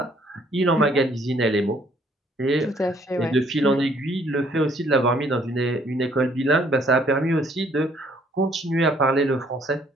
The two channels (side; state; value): both; normal; correlation 0.63